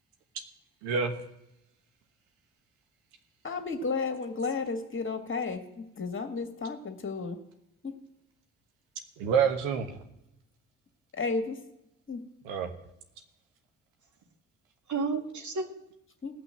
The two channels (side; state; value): both; normal; correlation 0.16